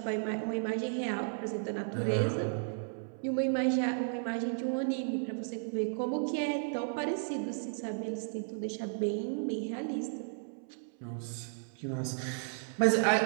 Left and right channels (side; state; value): left; silent; 55 dB below the other